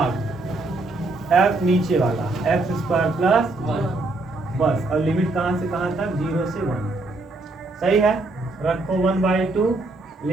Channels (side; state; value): left; quieter; 3.0 dB